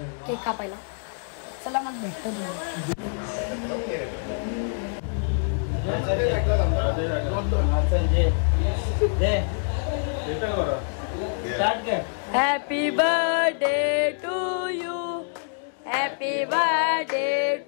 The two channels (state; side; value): silent; right; digital silence